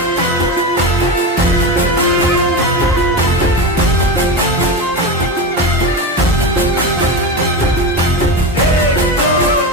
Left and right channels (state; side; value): normal; both; correlation 0.20